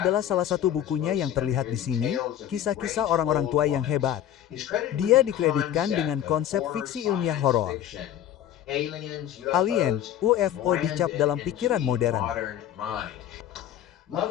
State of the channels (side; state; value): right; quieter; 11.1 dB